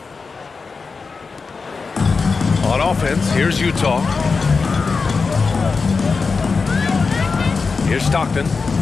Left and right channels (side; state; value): right; quieter; 4.6 dB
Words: On offense, here's Utah. Here's Stockton.